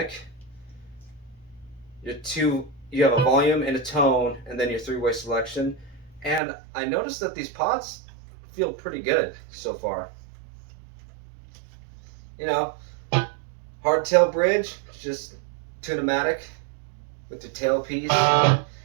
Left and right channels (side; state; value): left; drops out; at 6.4 s